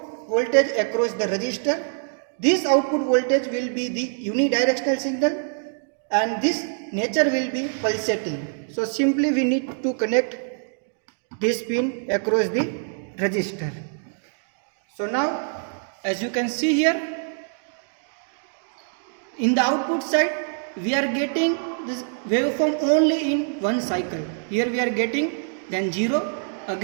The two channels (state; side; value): silent; left; digital silence